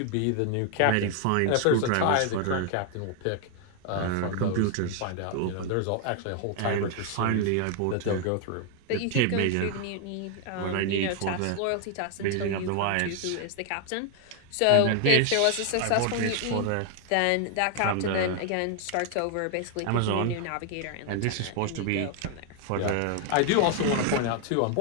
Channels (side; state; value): both; different; correlation 0.00